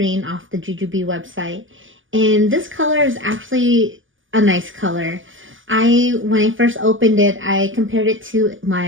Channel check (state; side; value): late; left; 0.57 ms